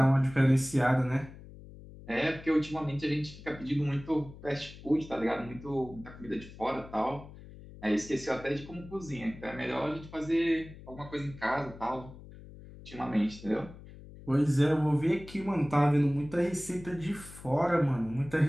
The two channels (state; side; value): noise; left; hum, 17 dB below the sound